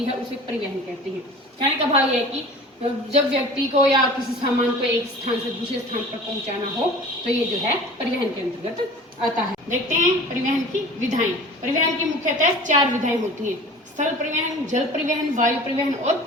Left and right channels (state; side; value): normal; both; correlation 0.41